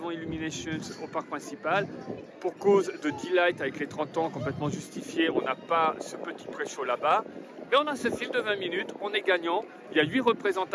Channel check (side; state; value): both; identical; correlation 1.00